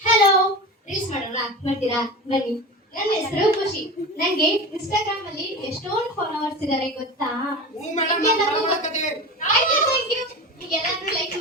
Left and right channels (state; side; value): normal; both; correlation 0.28